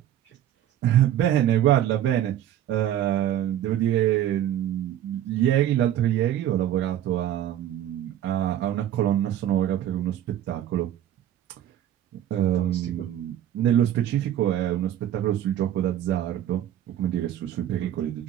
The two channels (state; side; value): quieter; left; 11.5 dB